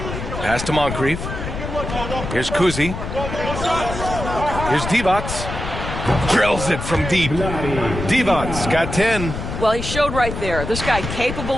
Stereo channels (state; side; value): noise; left; rumble, 6 dB below the sound